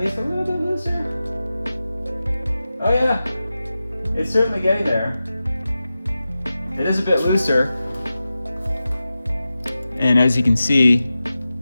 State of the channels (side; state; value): both; inverted; correlation -0.93